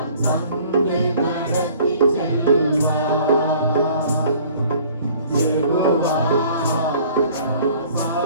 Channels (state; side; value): inverted; both; correlation -0.52